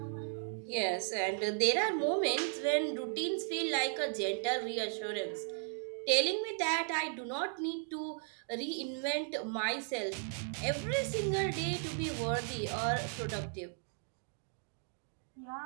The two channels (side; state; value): left; silent; 54 dB below the other